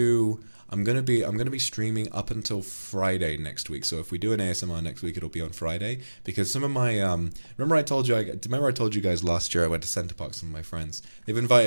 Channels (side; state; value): both; inverted; correlation -1.00